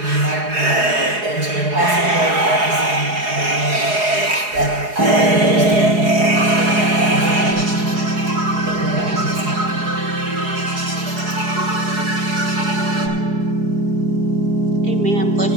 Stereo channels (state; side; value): late; left; 4.8 ms